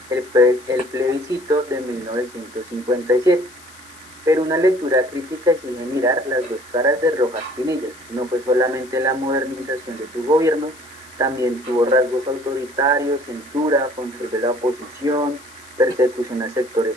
el plebiscito de 1957. Pero una lectura crítica exige mirar las dos caras de Rojas Pinillas. No fue solamente la modernización de su gobierno, también tuvo rasgos autoritarios, censura, control de la oposición, persecución a sectores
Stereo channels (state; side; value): noise; left; hiss, 22 dB below the sound